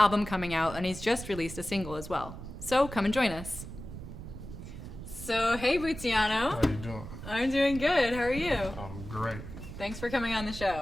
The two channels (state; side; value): noise; right; rumble, 11 dB below the sound